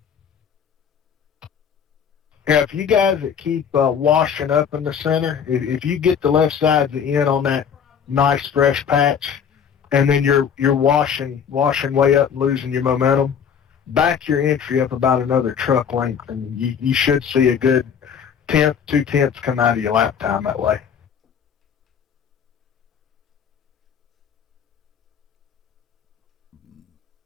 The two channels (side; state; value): right; quieter; 7.5 dB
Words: Yeah, if you guys that keep washing up in the center, if you get the left side of the end on that nice fresh patch, and then you're washing way up and losing your momentum, back your entry up about another truck length, and you should see a good tenth, 2/10 come out of your lap time that way.